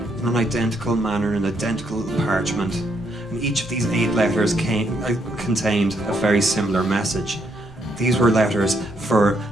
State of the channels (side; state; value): both; normal; correlation 0.74